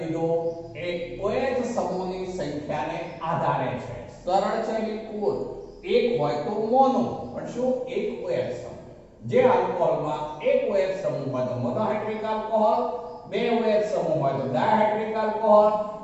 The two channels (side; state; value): both; identical; correlation 1.00